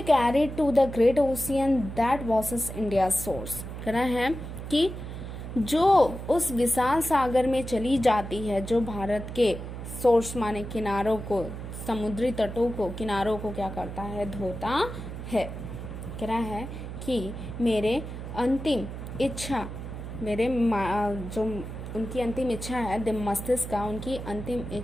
carried to the great ocean that was India source. कहना है कि जो उस विशाल सागर में चली जाती है, जो भारत के सोर्स माने किनारों को, समुद्री तटों को, किनारों को क्या करता है, धोता है। कह रहा है कि मेरे अंतिम इच्छा, मेरे जो उनकी अंतिम इच्छा है, मस्तिष्क का उनकी अंतिम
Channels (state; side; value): noise; right; hum, 8 dB below the sound